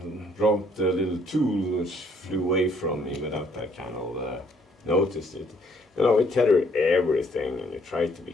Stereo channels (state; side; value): normal; both; correlation 0.65